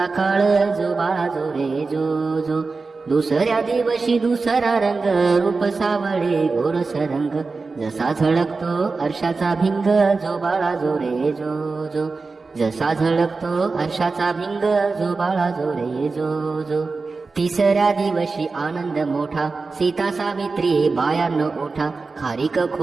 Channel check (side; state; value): left; quieter; 4.1 dB